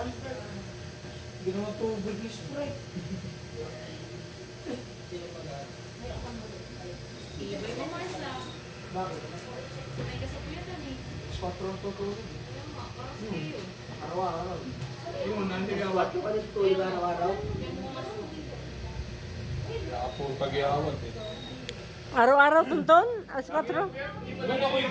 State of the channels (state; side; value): identical; both; correlation 1.00